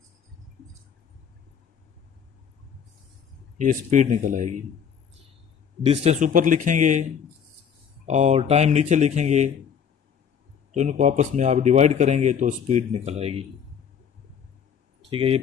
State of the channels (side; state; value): right; quieter; 7.7 dB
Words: ये स्पीड निकल आएगी। डिस्टेंस ऊपर लिखेंगे और टाइम नीचे लिखेंगे, तो इनको आपस में आप डिवाइड करेंगे तो स्पीड निकल आएगी। ठीक है, ये